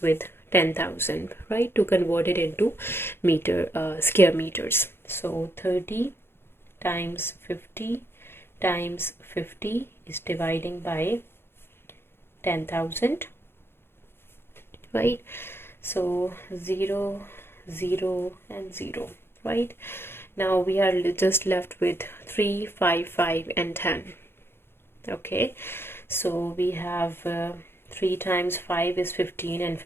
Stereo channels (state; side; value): late; right; 0.11 ms